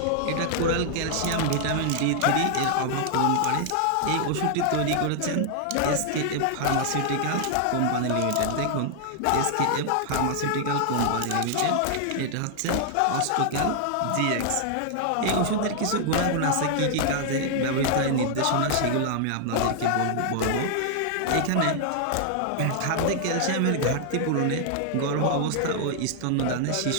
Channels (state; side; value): different; both; correlation 0.00